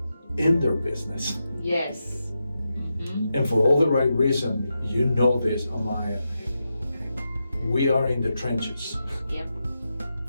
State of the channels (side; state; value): both; inverted; correlation -0.88